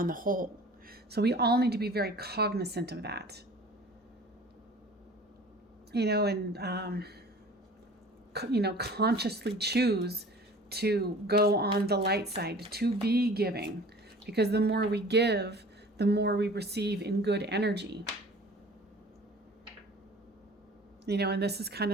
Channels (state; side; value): normal; both; correlation 0.45